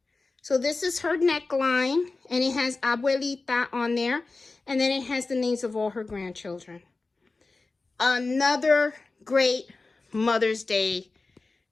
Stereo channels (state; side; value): quieter; right; 3.7 dB